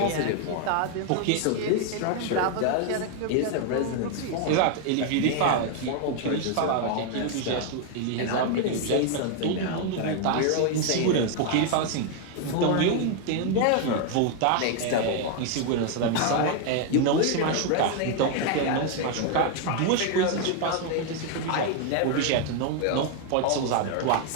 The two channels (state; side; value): different; both; correlation 0.00